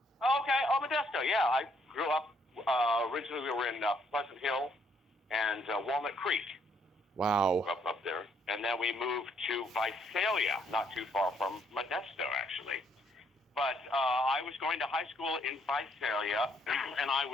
Oh, Modesto. Yeah, I grew up. Originally, we were in Pleasant Hill and Walnut Creek. Wow. Up there, and then we moved to Visalia, not too far from Modesto, actually. But I was going to high school in Visalia, and I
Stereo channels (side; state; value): both; normal; correlation 0.69